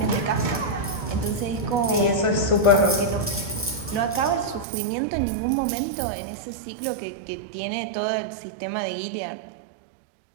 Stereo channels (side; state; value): left; drops out; at 4.7 s